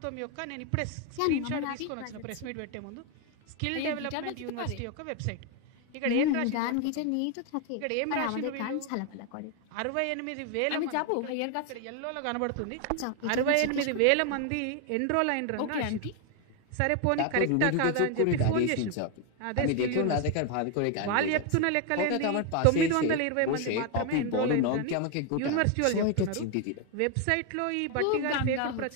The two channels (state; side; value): different; both; correlation 0.01